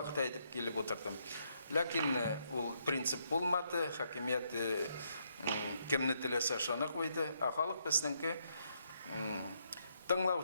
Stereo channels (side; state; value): both; inverted; correlation -0.75